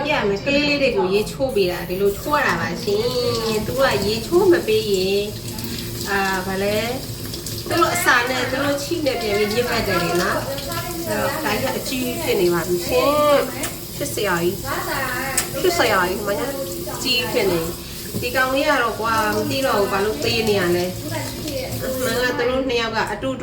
ကလေးလေးတွေကိုရေချိုးပေးတာဒီလိုချိုးရတာပါရှင်သူကရေချိုးမပေးရင်ဘာလဲသူတို့အစာနဲ့သူတို့ချိနဲ့ပြန်ပြီးညစ်ပတ်တယ်လေနော်အဲ့တော့ဒါကြီးအကြီးဖြစ်နေပါပြီရှင်ဖြစ်စရာကြီးမညာကြီးဖြစ်နေဒီကောင်လေးကတော့ကွာမသိတော့ဘူးဘာလို့သေးနေရလဲမှန်ကသူတို့နှစ်ယောက်ကအတူတ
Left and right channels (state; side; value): identical; both; correlation 1.00